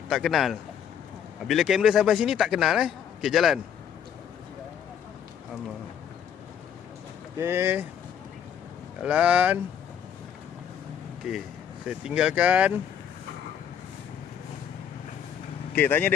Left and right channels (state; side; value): quieter; right; 8.7 dB